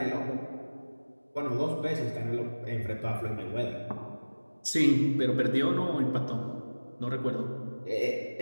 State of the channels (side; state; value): both; inverted; correlation -1.00